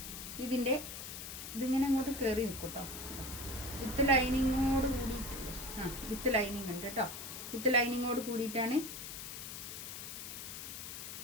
ഇതിങ്ങനെ അങ്ങോട്ട് കയറി നിൽക്കും കേട്ടോ. വിത്ത് ലൈനിങ്ങോട് കൂടിയിട്ടുണ്ട്. വിത്ത് ലൈനിങ് ഉണ്ട് കേട്ടോ. വിത്ത് ലൈനിങ്ങോട് കൂടിയിട്ടാണ്.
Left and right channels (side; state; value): left; noise; hiss, 8 dB below the sound